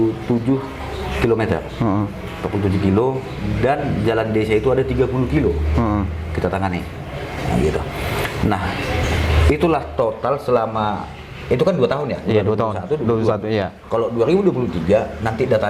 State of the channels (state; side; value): identical; both; correlation 1.00